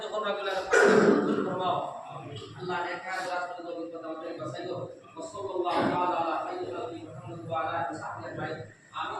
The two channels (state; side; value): identical; both; correlation 1.00